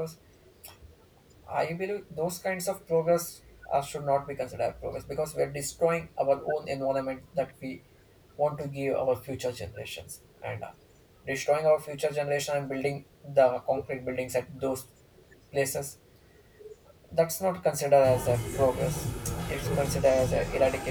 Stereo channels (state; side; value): identical; both; correlation 1.00